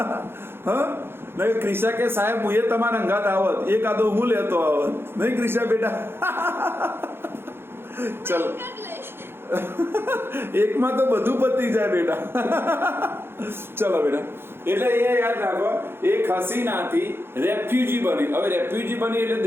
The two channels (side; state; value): left; late; 0.11 ms